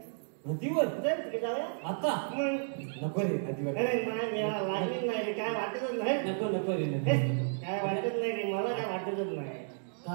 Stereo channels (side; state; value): left; silent; digital silence